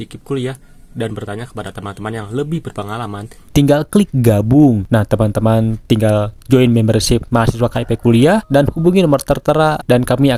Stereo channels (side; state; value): both; identical; correlation 1.00